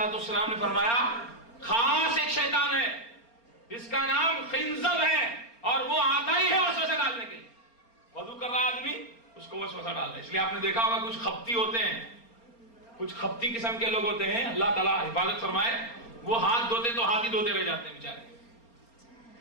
والسلام نے فرمایا خاص ایک شیطان ہے جس کا نام خنزب ہے اور وہ آتا ہی ہے وسوسہ ڈالنے کے لیے. وضو کر رہا آدمی اس کو وسوسہ ڈالتا ہے. اس لیے آپ نے دیکھا ہوگا کچھ خپتی ہوتے ہیں، کچھ خپتی قسم کے لوگ ہوتے ہیں، اللہ تعالیٰ حفاظت فرمائے، وہ ہاتھ دھوتے تو ہاتھ ہی دھوتے رہ جاتے ہیں بیچارے.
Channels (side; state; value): right; late; 4.3 ms